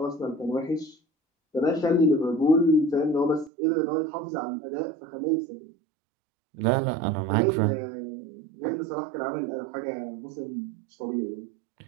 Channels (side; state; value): left; drops out; at 3.5 s